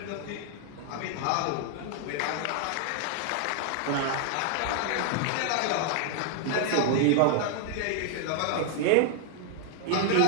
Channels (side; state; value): both; different; correlation 0.00